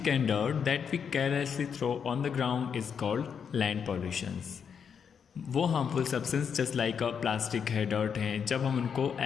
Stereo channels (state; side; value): quieter; right; 7.0 dB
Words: and dirt that we carelessly throw on the ground is called land pollutions. वो harmful substance just like plastic है, डर्ट है, जब हम उनको